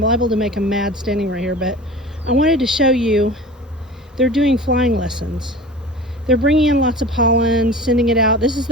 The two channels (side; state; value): both; normal; correlation 0.37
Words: liable to make them mad standing right here, but I wanted to show you they're doing flying lessons. They're bringing in lots of pollen, sending it out. This is